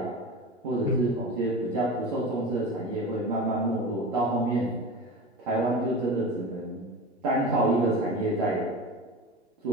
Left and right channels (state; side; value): normal; both; correlation 0.30